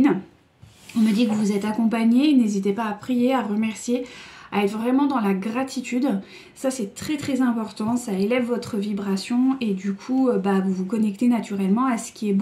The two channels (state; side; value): identical; both; correlation 1.00